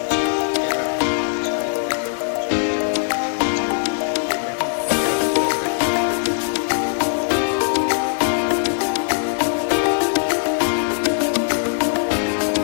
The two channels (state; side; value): silent; right; digital silence